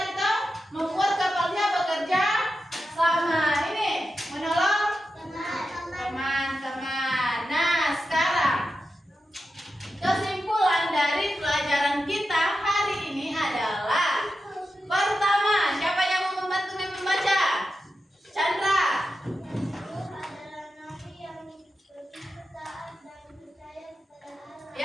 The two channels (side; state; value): both; normal; correlation 0.90